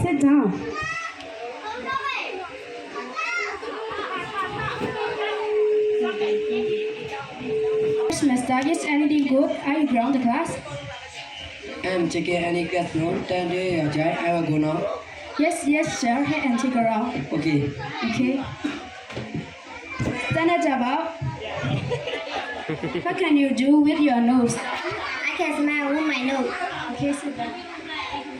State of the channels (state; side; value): identical; both; correlation 1.00